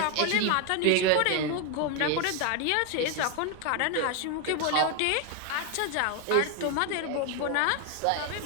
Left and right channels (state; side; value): different; both; correlation 0.01